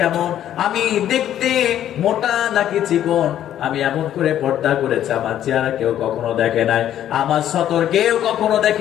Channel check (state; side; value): quieter; right; 11.2 dB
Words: কেমন, আমি দেখতে মোটা নাকি চিকন, আমি এমন করে পর্দা করেছি, আমার চেহারা কেউ কখনো দেখে নাই, আমার সতর কেউ কখনো